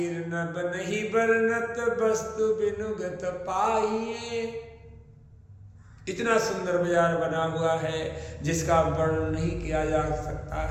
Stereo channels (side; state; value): both; identical; correlation 1.00